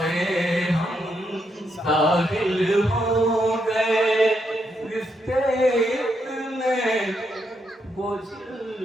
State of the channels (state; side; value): normal; both; correlation 0.79